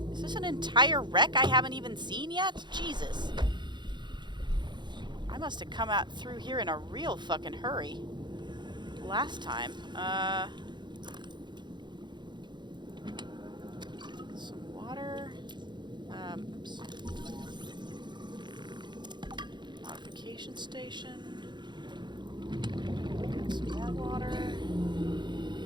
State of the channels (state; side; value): late; left; 0.22 ms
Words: Is this an entire wreck I haven't even seen yet? Jesus. I must have come out through here in a real fucking hurry last time. Some water. Oops. Modification station. Get some more water.